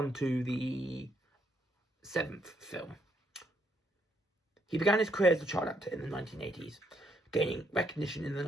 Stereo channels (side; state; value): both; normal; correlation 0.73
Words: to the 7th film. He began his career as a child actor in the 1980s, gaining recognition in the